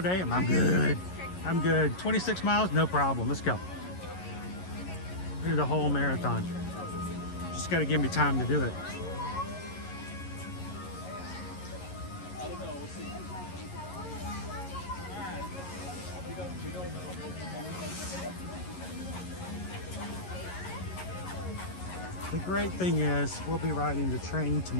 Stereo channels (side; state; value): right; late; 11 ms